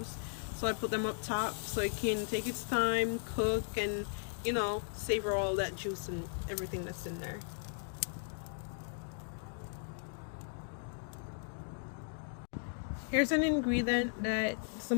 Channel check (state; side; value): silent; right; digital silence